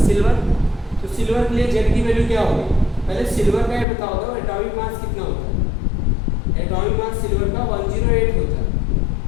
सिल्वर। तो सिल्वर के लिए जेड की वैल्यू क्या होगी? पहले सिल्वर का ये बताओ दो, एटॉमिक मास कितना होता है? एटॉमिक मास सिल्वर का 108 होता है।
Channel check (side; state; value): right; drops out; at 3.9 s